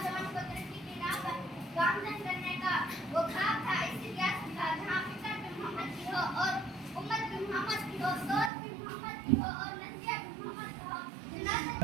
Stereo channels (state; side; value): drops out; left; at 8.5 s